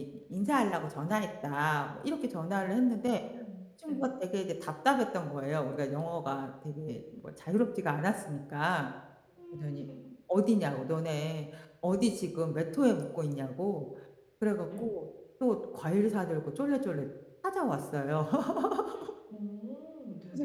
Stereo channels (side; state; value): both; identical; correlation 1.00